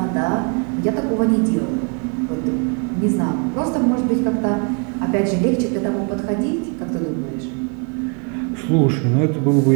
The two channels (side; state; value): left; quieter; 37.6 dB